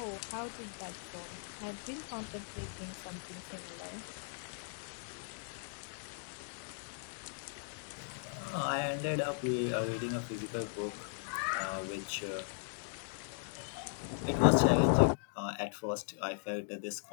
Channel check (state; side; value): silent; right; digital silence